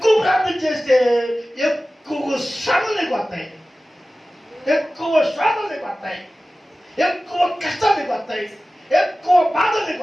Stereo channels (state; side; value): normal; both; correlation 0.96